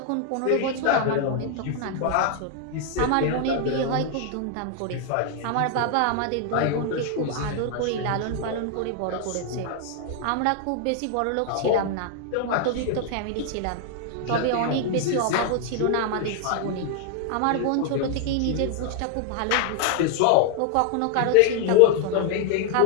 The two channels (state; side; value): different; both; correlation 0.00